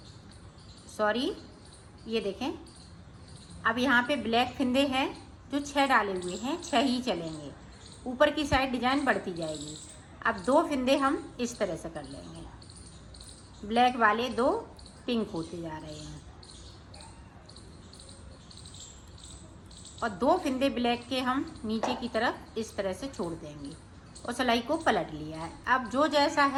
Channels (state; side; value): identical; both; correlation 1.00